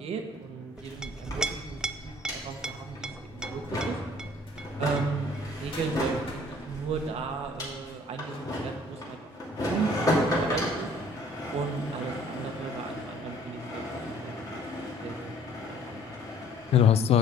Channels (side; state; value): both; normal; correlation 0.56